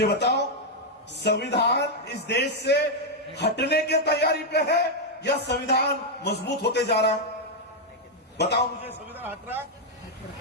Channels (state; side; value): normal; both; correlation -0.01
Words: बताओ, संविधान इस देश से हटने की तैयारी पे है या संविधान मजबूत होते जा रहा है? बताओ मुझे, संविधान हट रहा है?